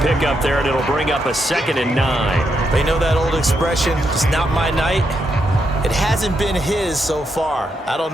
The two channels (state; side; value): normal; both; correlation 0.81